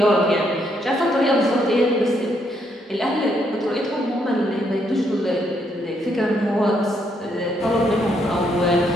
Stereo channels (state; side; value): normal; both; correlation 0.74